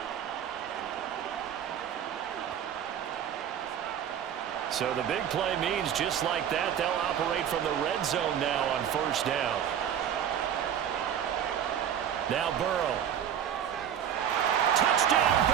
So the big play means just like that, they'll operate from the red zone now on 1st down. Now Burrow. Touchdown,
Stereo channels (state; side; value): quieter; left; 9.3 dB